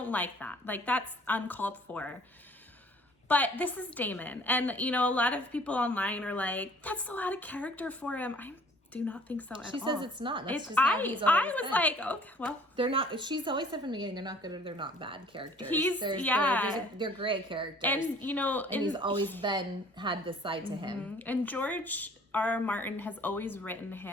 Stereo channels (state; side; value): normal; both; correlation 0.54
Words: like that. Like, that's uncalled for. But this is Daemon. And, you know, a lot of people online are like, that's so out of character for him. I do not think so at all. She says it's not. That's It's, just how he's always I was been. like, okay, well. They're not, she's always said from the beginning, they're not good or they're not bad characters. They're gray characters. And, you know. And he's always had this side to him. And George R. Martin has always written